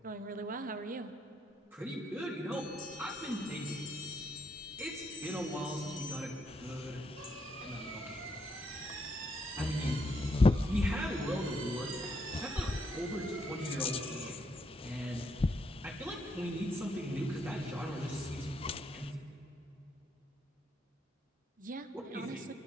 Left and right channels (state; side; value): normal; both; correlation 0.76